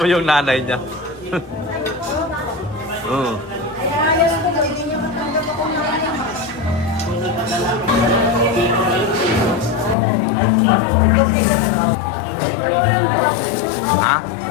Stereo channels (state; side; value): drops out; right; at 10.0 s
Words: yung nanay niya. Ha?